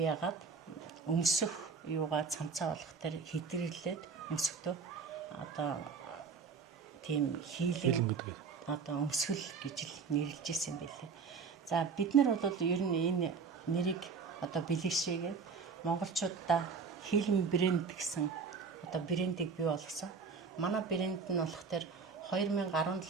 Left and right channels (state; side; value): quieter; left; 5.4 dB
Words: яагаад өмсөх юугаа цамцаа болох тэр хэдрэглээд өмсөхдөө одоо тийм Healing гэдэг. Одоо өмсгөл гэж л нэрлэж ирсэн байлээ. За бид нар бол ер нь энэ нэрийг одоо бэлэгшээгээд монголчуудаа Healing брэнд гэсэн одоо брэндийг бий болгосон. Манай брэнд нь болохоор